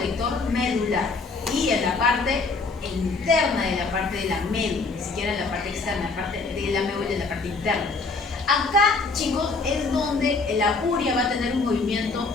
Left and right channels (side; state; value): right; quieter; 3.9 dB